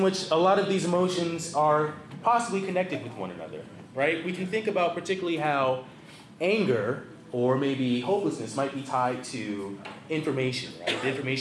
which a lot of these emotions are possibly connected with one another, right? We can think about particularly how anger or maybe hopelessness might be tied to information, right? The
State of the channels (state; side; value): identical; both; correlation 1.00